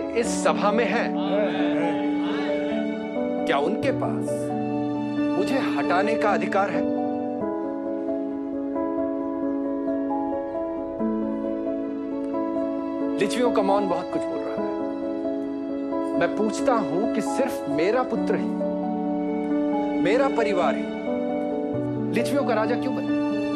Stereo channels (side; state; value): both; identical; correlation 1.00